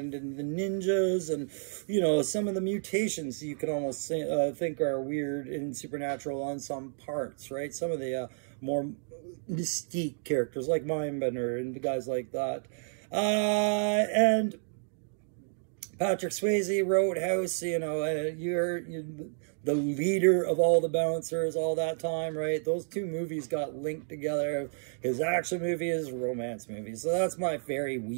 the ninjas and, you know, some of the mutations you could almost say, think are weird and supernatural on some parts, right? Some of the more mystique characters like Mindbender and the guys like that. And Patrick Swayze, Roadhouse, you know, you're the leader of all the bouncers all that time, right? Those two movies got linked together. His action movie, his romance movie. So that's my very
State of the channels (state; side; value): silent; left; digital silence